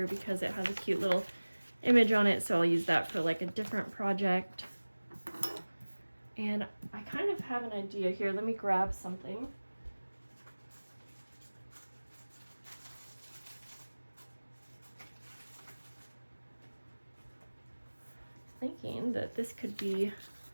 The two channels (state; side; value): inverted; both; correlation -1.00